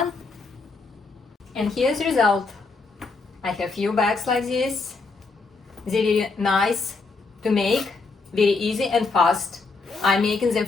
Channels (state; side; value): quieter; right; 4.0 dB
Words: And here's the result. I have few bags like this. They're very nice to make, very easy and fast. I'm making them